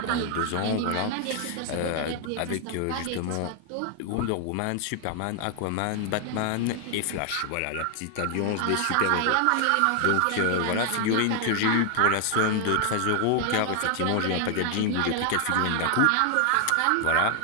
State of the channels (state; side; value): different; both; correlation 0.00